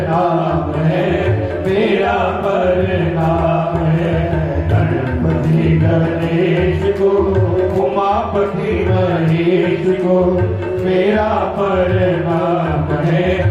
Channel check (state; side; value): identical; both; correlation 1.00